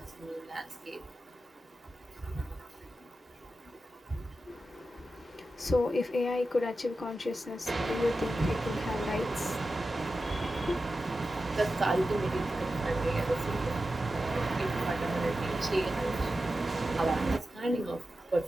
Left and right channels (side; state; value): both; normal; correlation 0.92